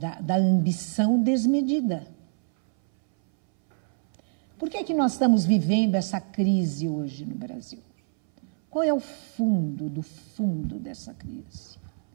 ambição desmedida. Por que nós estamos vivendo essa crise hoje no Brasil? Qual é o fundo do fundo dessa crise?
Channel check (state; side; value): silent; left; 61 dB below the other